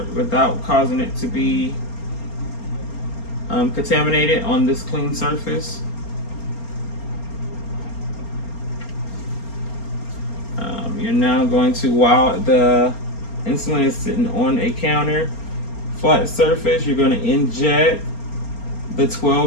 causing it to be contaminated on this clean surface. You're now going to, while the insulin is sitting on a counter, flat surface, you're going to inject the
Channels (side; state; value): right; late; 4.3 ms